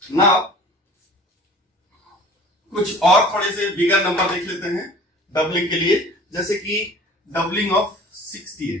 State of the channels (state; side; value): normal; both; correlation 0.45